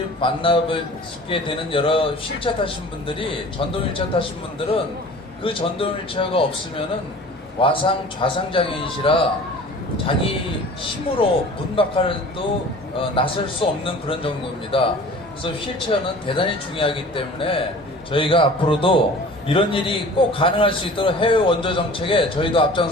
만나뵙게 되는 여러 휠체어 타신 분들이, 전동 휠체어 타신 분들은 그 전동 휠체어가 없으면은 와상 좌상 장애인이시라 자기 힘으로 문 밖으로도 나설 수 없는 그런 정도입니다. 그래서 휠체어는 대단히 중요하기 때문에 저희가 앞으로도 이런 일이 꼭 가능할 수 있도록 해외 원조 정책에 저희도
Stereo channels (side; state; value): both; normal; correlation 0.44